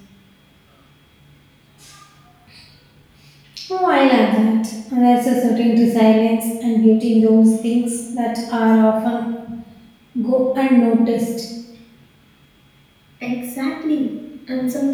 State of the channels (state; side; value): identical; both; correlation 1.00